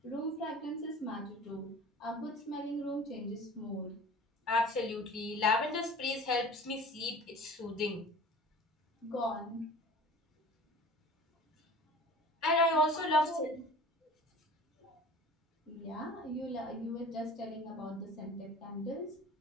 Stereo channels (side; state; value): both; normal; correlation 0.42